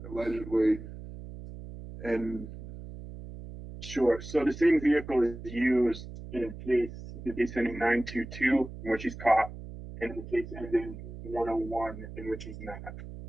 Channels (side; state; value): right; noise; hum, 12 dB below the sound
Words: allegedly, and... Sure. So the same vehicle is used in the case ending 922, in which he's caught, and the case ending 101, in which he's not.